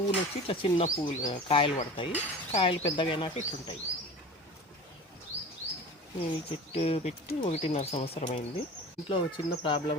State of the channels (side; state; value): both; normal; correlation 0.37